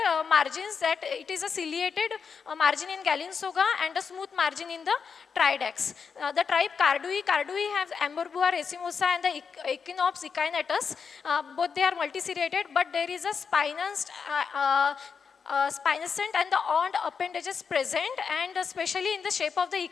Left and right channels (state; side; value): quieter; right; 6.0 dB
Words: margins, that it is a ciliated margin in Gallingsoga and a smooth margin in the Tridax. The tribe Cardui have Amberbua racemosa and the Echinops echinatus. Both they are multiseriated, but there is a spinosant and the horned appendages present, and especially in the shape of the